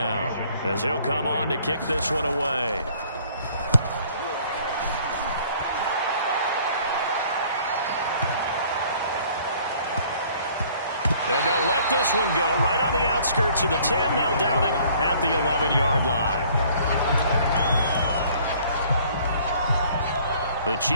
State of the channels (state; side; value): inverted; both; correlation -0.57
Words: as he'll come on to kick this one away. And they'll let this one go right on the outskirts of the 10. They'll down it at the 11-yard line. The